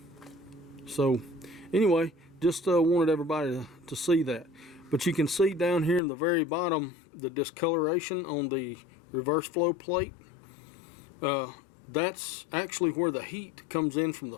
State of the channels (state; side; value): drops out; right; at 6.0 s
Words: So anyway, just wanted everybody to see that. But you can see down here in the very bottom the discoloration on the reverse flow plate. That's actually where the heat comes in from the